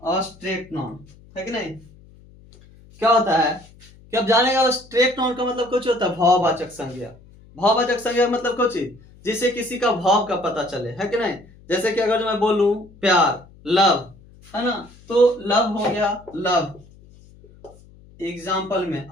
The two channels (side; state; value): left; noise; hum, 25 dB below the sound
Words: abstract noun है कि नहीं। क्या होता है कि अब जानेगा abstract noun का मतलब कुछ होता है भाववाचक संज्ञा। भाववाचक संज्ञा मतलब कुछ जिससे किसी का भाव का पता चले, है कि नहीं। जैसे कि अगर मैं बोलूं प्यार, लव, है ना, तो लव हो गया लव। एग्जाम्पल में